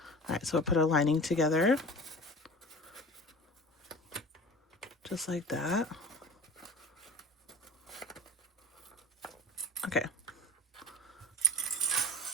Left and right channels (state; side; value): normal; both; correlation 0.36